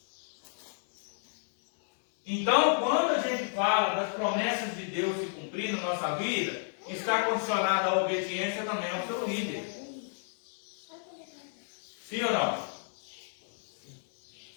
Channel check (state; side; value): silent; right; digital silence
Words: Então, quando a gente fala das promessas de Deus se cumprindo na nossa vida, está condicionada a obediência também ao seu líder. Sim ou não?